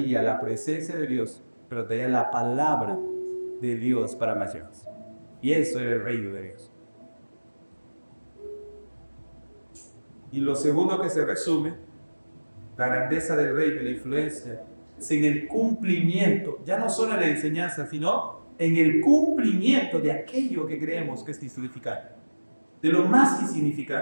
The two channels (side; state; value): both; inverted; correlation -1.00